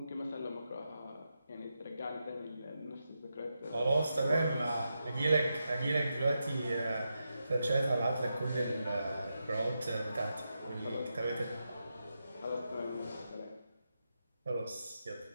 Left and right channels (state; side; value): inverted; both; correlation -0.87